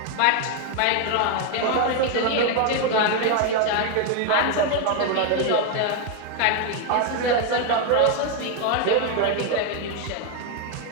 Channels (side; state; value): both; different; correlation 0.01